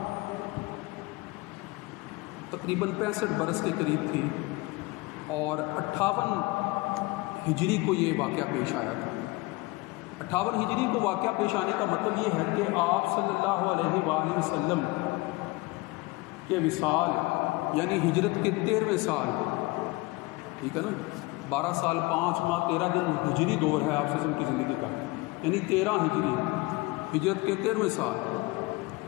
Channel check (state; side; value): quieter; right; 22.8 dB